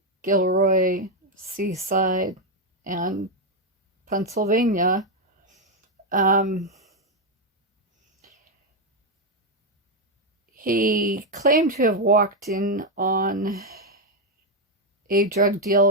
Gilroy, Seaside, and Pennsylvania. He claimed to have walked in on a drug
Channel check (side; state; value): both; normal; correlation 0.04